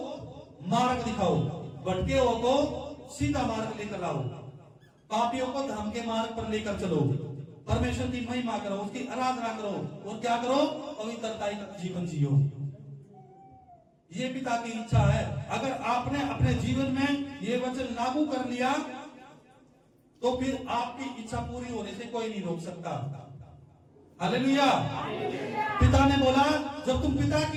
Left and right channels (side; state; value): both; identical; correlation 1.00